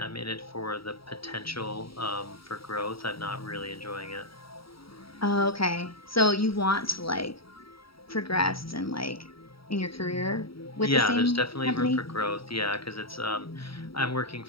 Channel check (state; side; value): late; right; 0.75 ms